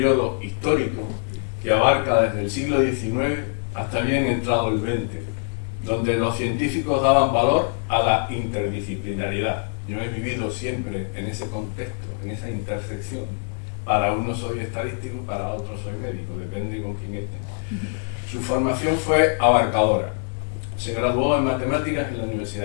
histórico que abarca desde el siglo XIX hasta bien entrado el XX, donde los científicos daban valor a la interdisciplinaridad. Yo he vivido siempre en ese contexto, en esa intersección. Para unos soy estadístico, para otros soy médico, depende con quién esté. Su formación fue abarcadora. Se graduó en matemáticas en la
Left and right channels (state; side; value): silent; right; 63 dB below the other